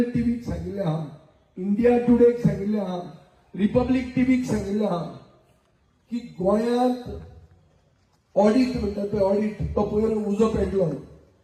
टीव्हीक सांगिल्लें आहा इंडिया टुडेक सांगिल्लें आहा रिपब्लीक टीव्हीक सांगिल्लें आहा की गोंयांत ऑडिट म्हणटा पळय ऑडिट तो पयर उजो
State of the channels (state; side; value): identical; both; correlation 1.00